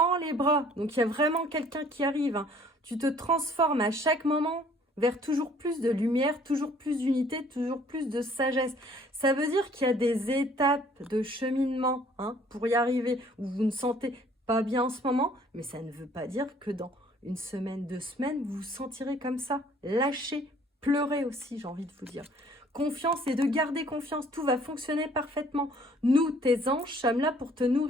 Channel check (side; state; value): both; normal; correlation 0.57